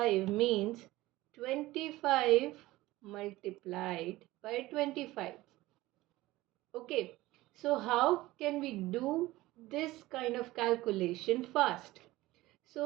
means 25 multiplied by 25. Okay, so how can we do this kind of calculation fast?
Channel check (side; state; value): left; quieter; 18.2 dB